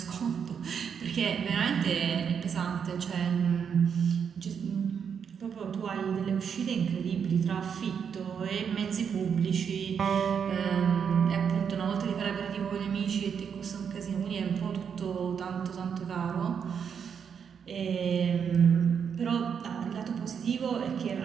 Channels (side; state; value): left; quieter; 7.2 dB